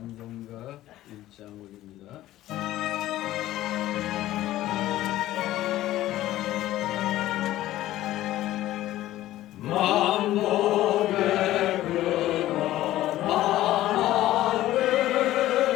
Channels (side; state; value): right; quieter; 14.8 dB